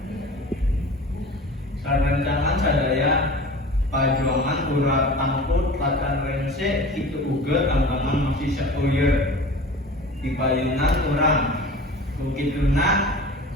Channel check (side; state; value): both; normal; correlation 0.38